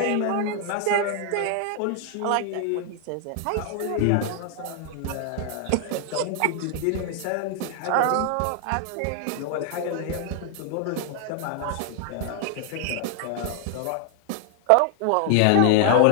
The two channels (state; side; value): different; both; correlation 0.00